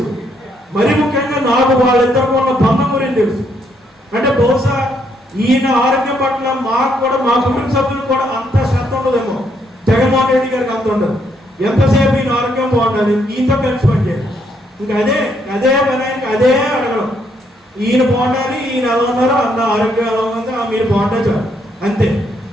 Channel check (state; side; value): normal; both; correlation 0.73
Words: మరి ముఖ్యంగా నాకు వాళ్ళిద్దరికి ఉన్న బంధం గురించి తెలుసు. అంటే బహుశా ఈయన ఆరోగ్యం పట్ల మాకు కూడా, మా కుటుంబ సభ్యులు కూడా అంత శ్రద్ధ ఉండదేమో, జగన్మోహన్ రెడ్డి గారికి అంత ఉండదు. ఎంతసేపు ఈయన ఆరోగ్యం బాగుండాలి, ఈయనతో కలిసి పనిచేయాలి. ఇంకా అదే పని ఆయనకి అదే అడగడం, ఈయన బాగుండాలి, ఈయన ఎలా ఉన్నారు, అన్న ఆరోగ్యం ఎలా ఉంది, మీరు బాగుంటే చాలు అంతే.